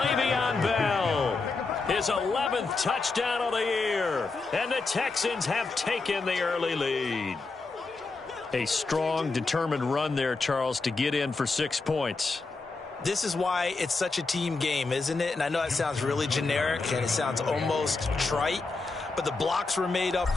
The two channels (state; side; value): quieter; right; 3.9 dB